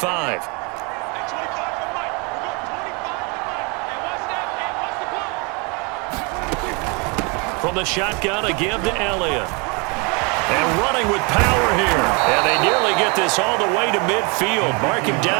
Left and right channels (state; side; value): quieter; left; 31.3 dB